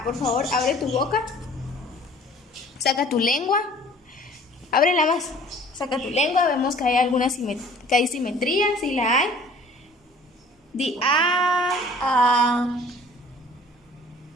por favor, abre tu boca, saca tu lengua, ábrela más, saca tu lengua, vemos que hay alguna simetría, si la hay. Di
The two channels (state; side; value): normal; both; correlation 0.51